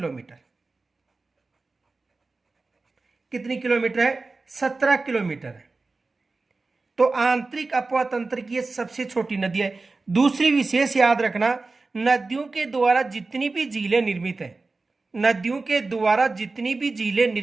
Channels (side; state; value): left; quieter; 3.7 dB